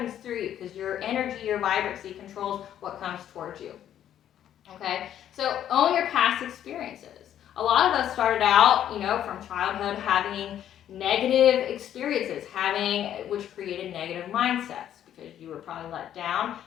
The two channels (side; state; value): right; quieter; 10.7 dB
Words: through you because your energy, your vibrancy controls what comes towards you, okay? So own your past experiences. A lot of us started out, from childhood having negative experiences, which created negative mindsets because you were probably let down.